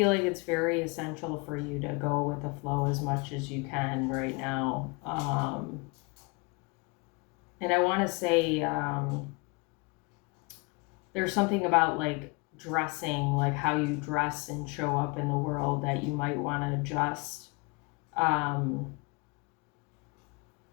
like it's very essential for you to go with the flow as much as you can right now. And I want to say there's something about like dressing, like how you dress and show up in the world, that you might want to adjust.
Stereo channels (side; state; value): right; quieter; 29.0 dB